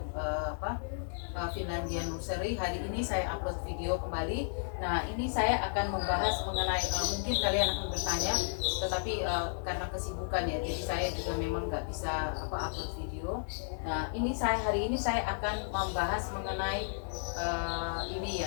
Finlandia Nursery. Hari ini saya upload video kembali. Nah, ini saya akan membahas mengenai mungkin kalian akan bertanya, tetapi karena kesibukan ya, jadi saya juga memang nggak bisa upload video. Nah, hari ini saya akan membahas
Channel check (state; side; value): silent; right; digital silence